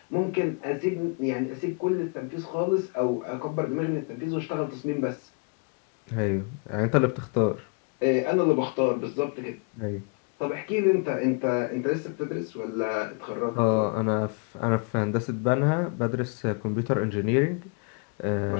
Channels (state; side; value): quieter; right; 36.5 dB